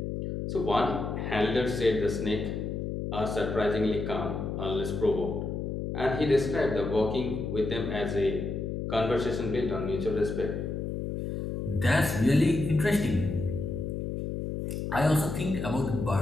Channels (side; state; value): left; noise; hum, 3 dB below the sound